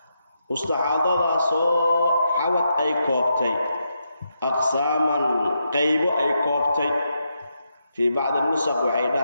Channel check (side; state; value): both; inverted; correlation -0.83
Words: مستحاضة سو حوت أي كوبتي أقساما قيب أي كوبتي في بعض النسخ وحي